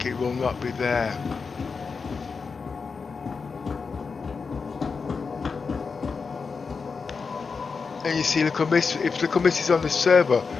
it will not be there. And you see, Little Miss, if Little Miss is on the server,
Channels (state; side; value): quieter; right; 5.1 dB